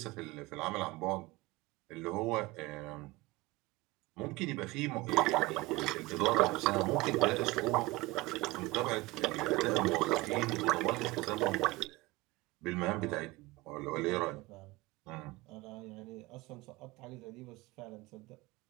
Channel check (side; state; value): left; quieter; 20.5 dB